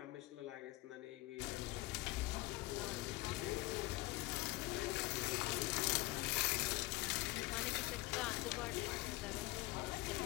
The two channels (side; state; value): right; quieter; 20.4 dB